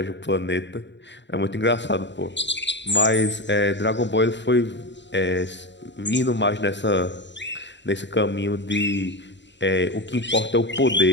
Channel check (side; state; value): right; late; 0.52 ms